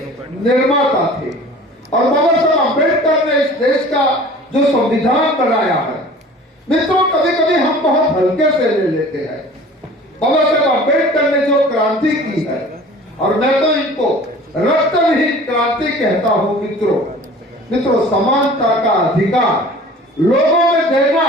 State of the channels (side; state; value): both; normal; correlation 0.44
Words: निर्माता थे और बाबा साहेब अम्बेडकर ने इस देश का जो संविधान बनाया है, मित्रों कभी कभी हम बहुत हल्के से ले लेते हैं। बाबा साहेब अम्बेडकर ने जो क्रांति की है, और मैं तो इनको रक्तविहीन क्रांति कहता हूं मित्रों, समानता का अधिकार लोगों में देना